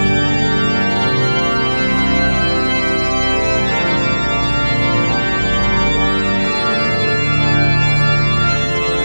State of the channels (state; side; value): inverted; both; correlation -1.00